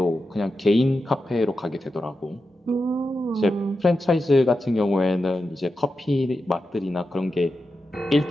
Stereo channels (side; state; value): both; normal; correlation 0.89